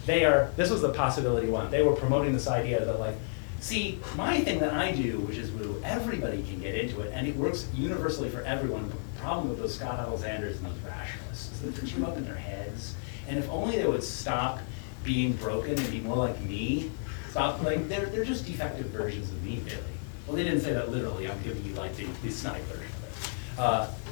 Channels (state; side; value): silent; right; digital silence